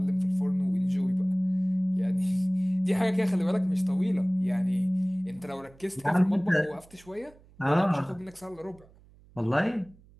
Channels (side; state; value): right; noise; hum, 26 dB below the sound